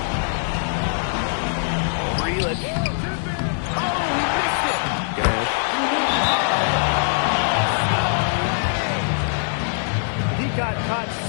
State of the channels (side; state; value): right; silent; digital silence